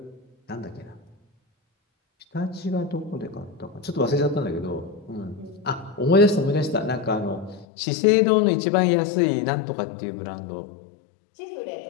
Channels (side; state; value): right; drops out; at 7.7 s